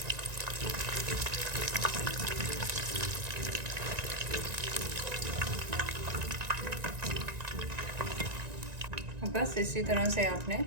बस इसी तरह से आपने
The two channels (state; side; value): late; left; 1.9 ms